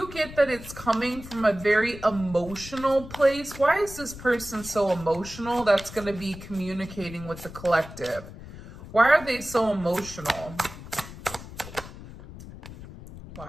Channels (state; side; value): noise; left; rumble, 14 dB below the sound